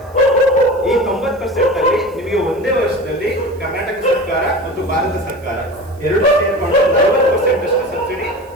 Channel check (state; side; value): noise; right; hiss, 30 dB below the sound